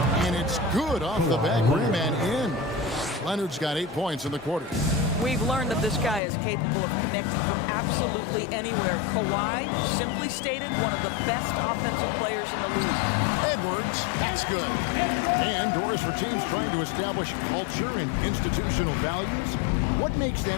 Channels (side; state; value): right; drops out; at 6.2 s